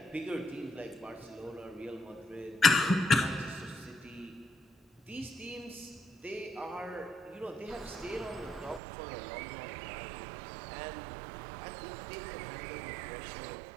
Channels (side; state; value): left; drops out; at 8.8 s